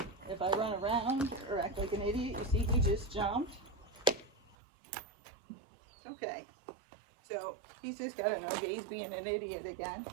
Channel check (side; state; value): left; drops out; at 4.5 s